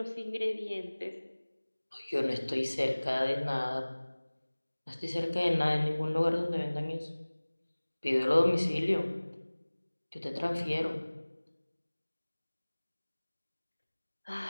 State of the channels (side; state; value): both; inverted; correlation -1.00